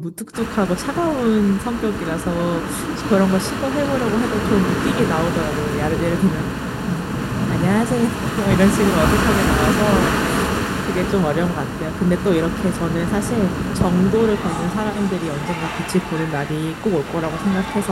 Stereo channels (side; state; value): both; identical; correlation 1.00